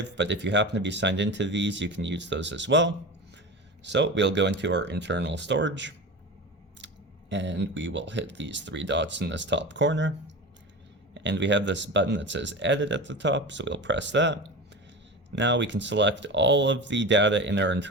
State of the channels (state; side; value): normal; both; correlation 0.29